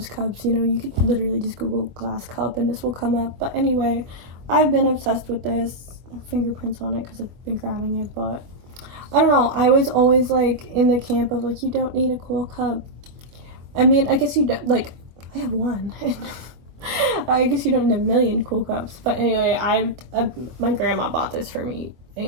cups, you know. You could literally just Google glass cup and this will come up. But anyway, I've been obsessed with this. Fingerprints on it because I've been grabbing it, but I don't know. I was always like in the camp of like, you don't need a cool cup. I mean, I guess you don't. Like, I have one. I guess you don't need a million cool cups. But anyway, my grandma bought this for me,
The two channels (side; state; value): left; late; 24 ms